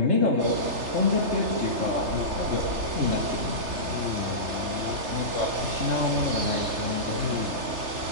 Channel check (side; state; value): left; late; 3.3 ms